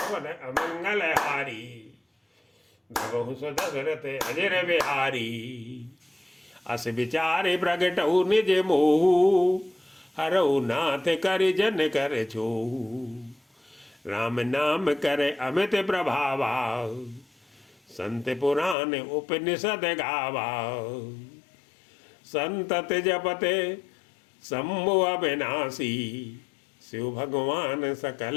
अमंगल हारी, भगहु सो दशरथ अजर बिहारी। अस विचारे प्रगटऊ निज मोहु, हरऊ नाथ कर जन कर छोहु। राम नाम करे अमित प्रभावा, संत पुराण उपनिषद गावा। संतत जपते शंभु अविनाशी, शिव भगवान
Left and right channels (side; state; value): right; drops out; at 18.8 s